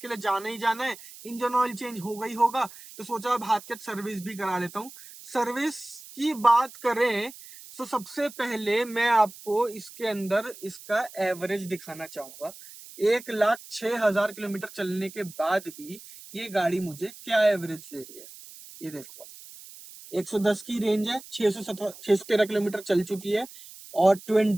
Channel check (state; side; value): noise; right; hiss, 17 dB below the sound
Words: लिए जाना ही जाना है, इंजन ऑयल चेंज हो गई होगा, तो सोचा अब हाथ के सर्विस भी करा लेता हूँ। सर्विस की बात करें तो सबसे पहले मैं आपको इसके अंदर इसका एवरेज दिखाना चाहूंगा। 1,06,000 किलोमीटर चलने के बाद भी ये गाड़ी मुझे क्या एवरेज दे रही है, ये देखो। 110 की रेंज है, 613 किलोमीटर चल चुकी है और